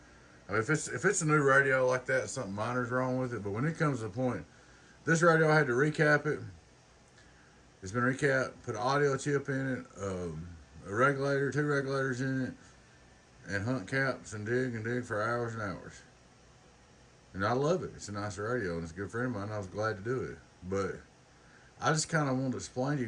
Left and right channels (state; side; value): identical; both; correlation 1.00